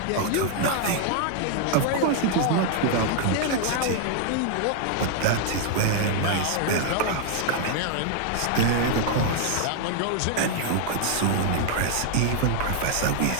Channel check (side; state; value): both; different; correlation 0.00